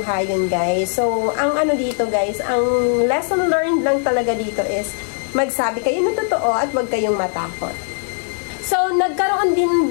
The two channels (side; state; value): right; silent; 66 dB below the other